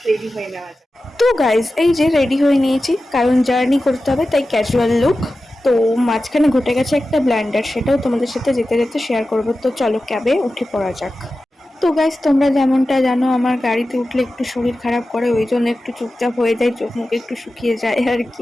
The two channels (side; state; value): both; normal; correlation 0.94